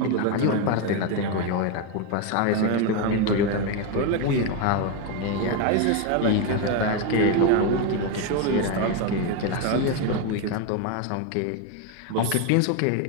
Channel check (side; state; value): both; different; correlation 0.02